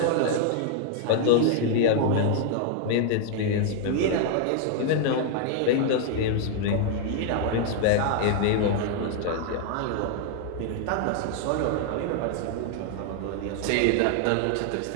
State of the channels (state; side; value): different; both; correlation 0.00